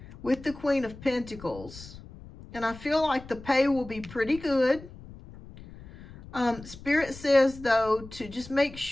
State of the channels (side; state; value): left; noise; rumble, 17 dB below the sound